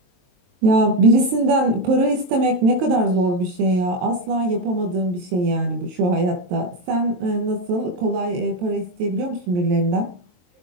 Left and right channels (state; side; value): late; left; 23 ms